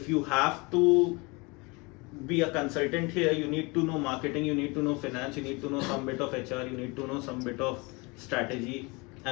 you have to be a consultant here, you need to know marketing, you need to know finance, you need to know some bit of HR, you need to know some bit of strategy,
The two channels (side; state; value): right; quieter; 27.2 dB